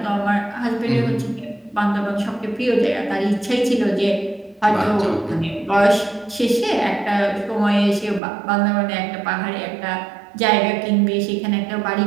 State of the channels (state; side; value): drops out; left; at 8.2 s